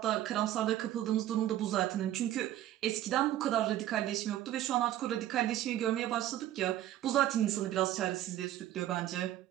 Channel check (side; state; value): left; quieter; 13.1 dB